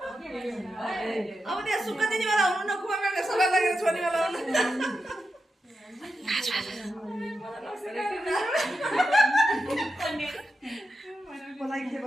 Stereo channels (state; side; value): normal; both; correlation 0.89